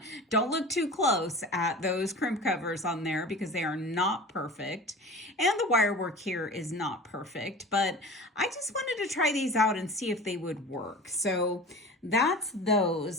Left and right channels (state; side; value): normal; both; correlation 0.36